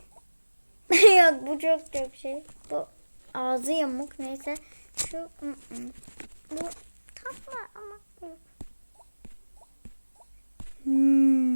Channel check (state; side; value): inverted; both; correlation -1.00